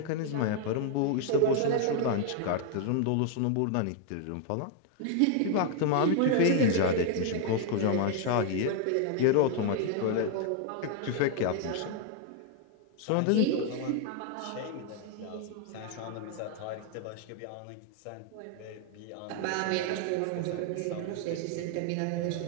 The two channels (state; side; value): different; both; correlation 0.00